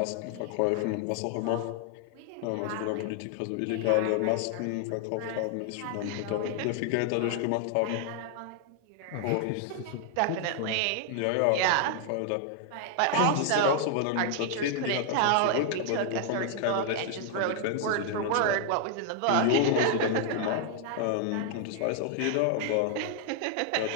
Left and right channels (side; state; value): both; different; correlation 0.00